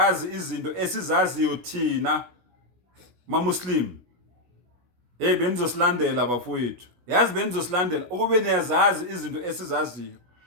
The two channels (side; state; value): left; late; 16 ms